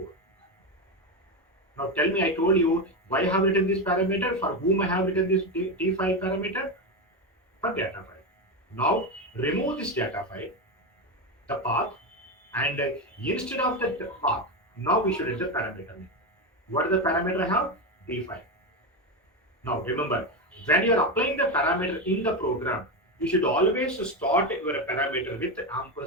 Now tell me, I told you why I have written this parameter, for whom I have written this t file parameter, for data file. Now remove this data file, the path, and instead of the path, now we should enter the parameter name. What is the parameter I have? D file. Now remember, when you are applying the parameter in the program, you should always start your parameter with the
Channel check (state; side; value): normal; both; correlation 0.13